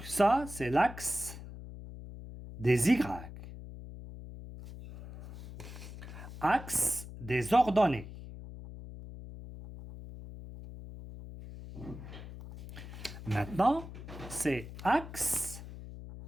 ça, c'est l'axe des Y. Axe des ordonnées. Maintenant, c'est axe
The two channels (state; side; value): noise; left; hum, 13 dB below the sound